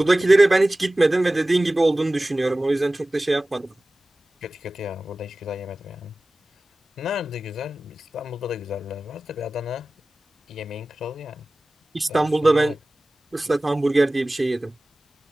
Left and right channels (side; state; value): both; normal; correlation 0.97